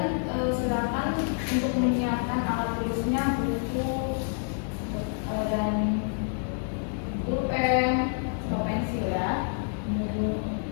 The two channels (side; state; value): right; silent; 59 dB below the other